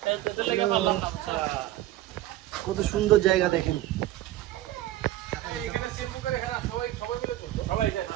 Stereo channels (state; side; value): quieter; left; 14.9 dB